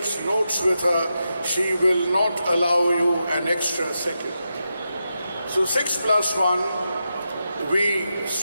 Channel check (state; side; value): inverted; both; correlation -0.87